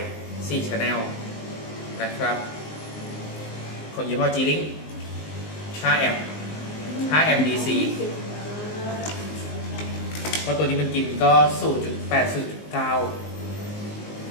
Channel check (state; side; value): late; right; 19 ms